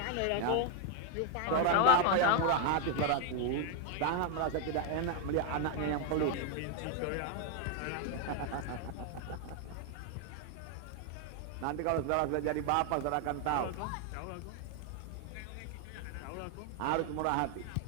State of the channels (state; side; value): different; both; correlation 0.01